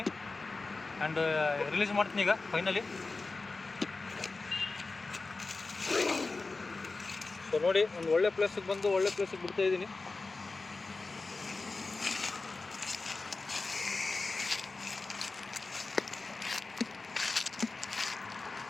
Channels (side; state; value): right; quieter; 3.7 dB